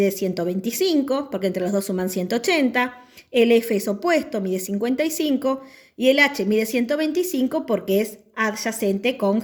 125, porque entre los dos suman 180. El F es opuesto, mide 55. Y el H mide 125 porque es adyacente con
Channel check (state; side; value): identical; both; correlation 1.00